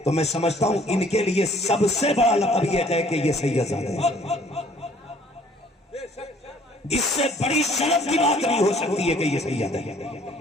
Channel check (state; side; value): normal; both; correlation 0.57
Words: تو میں سمجھتا ہوں ان کے لیے سب سے بڑا لقب یہ ہے کہ یہ سید زادہ ہے. اس سے بڑی شرف کی بات نہیں ہو سکتی ہے کہ یہ سید ہے.